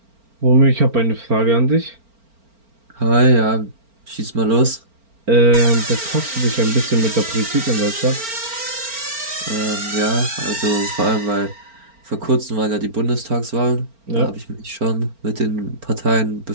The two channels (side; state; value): left; late; 4.4 ms